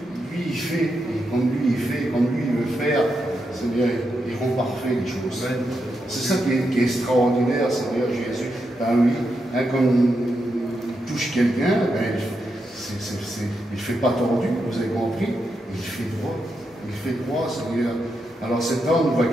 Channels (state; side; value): normal; both; correlation 0.84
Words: il fait, et comme lui il veut faire, Seigneur, il rend parfait les choses. C'est ça qui est extraordinaire, Seigneur Jésus. Ben oui, hein, comme il touche quelqu'un, ben, il ne fait pas tordu, vous avez compris, il fait droit. Il fait droit, Seigneur. Alors cet homme va